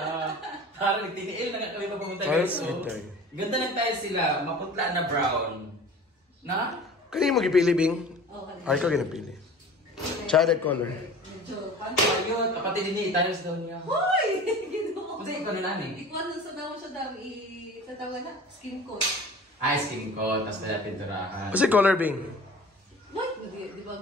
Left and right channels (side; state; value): both; normal; correlation 0.40